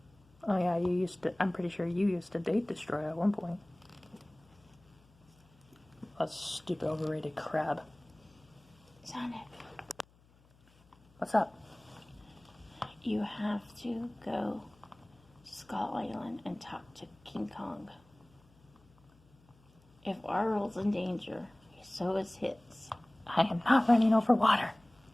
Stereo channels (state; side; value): noise; left; hum, 29 dB below the sound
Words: Oh yeah, I'm pretty sure you used to date Destroyer at one point. A stupid overrated crab. Sonic, What's up? you have to go to Skull Island and talk to King Kong. If our world's in danger, so is his. I am not running over water.